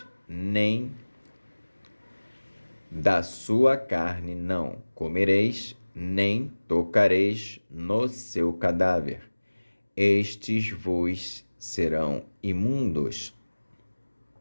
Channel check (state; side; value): inverted; both; correlation -1.00